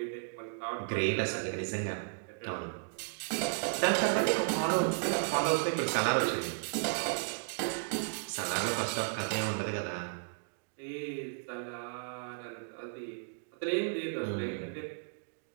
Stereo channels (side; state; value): left; silent; digital silence